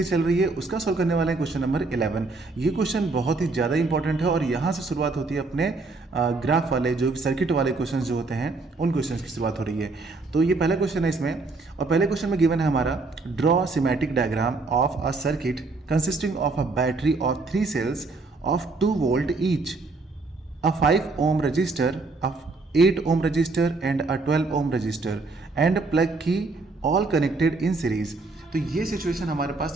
चल रही है। उसका सॉल्व करने वाला है क्वेश्चन नंबर 11। ये क्वेश्चन बहुत ही ज़्यादा इंपॉर्टेंट है और यहाँ से शुरुआत होती है अपने ग्राफ वाले जो सर्किट वाले क्वेश्चंस जो होते हैं उन क्वेश्चंस की शुरुआत हो रही है। तो ये पहला क्वेश्चन है इसमें, और पहले क्वेश्चन में गिवन है हमारा draw symmetric diagram of a circuit consisting of a battery of 3 cells of 2 volt each, a 5 ohm resistor, a 8 ohm resistor and a 12 ohm resistor and plug key all connected in series। तो ये situation हमारे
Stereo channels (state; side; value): quieter; left; 3.6 dB